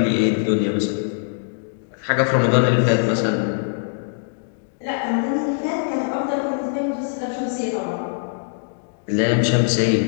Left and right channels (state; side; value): silent; right; digital silence